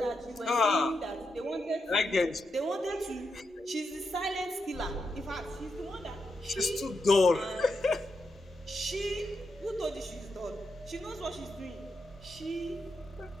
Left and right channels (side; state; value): both; normal; correlation 0.84